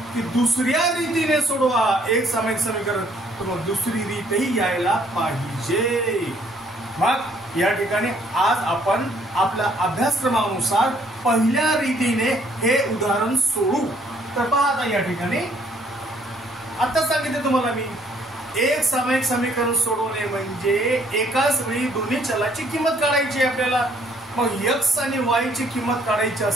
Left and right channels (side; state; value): both; normal; correlation 0.64